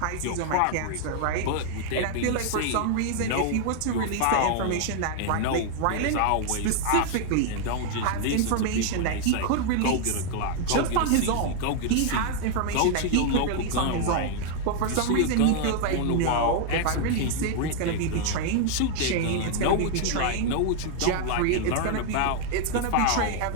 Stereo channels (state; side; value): different; both; correlation 0.00